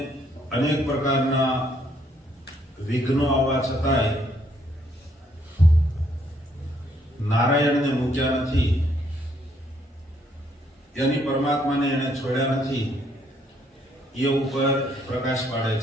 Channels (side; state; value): both; normal; correlation 0.69